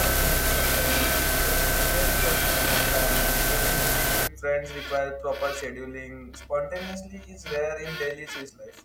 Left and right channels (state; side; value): identical; both; correlation 1.00